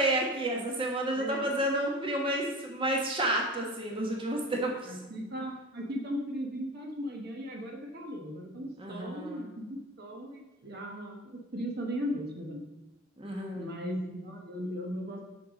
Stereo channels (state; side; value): normal; both; correlation 0.34